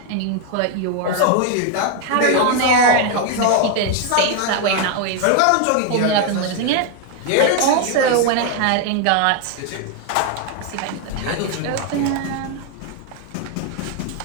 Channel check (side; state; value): both; different; correlation 0.00